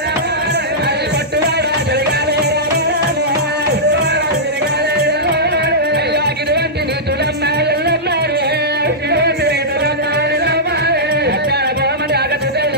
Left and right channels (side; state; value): both; normal; correlation -0.12